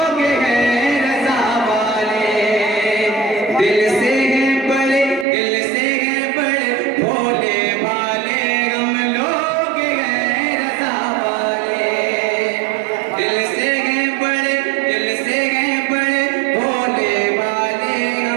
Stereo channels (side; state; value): left; drops out; at 5.2 s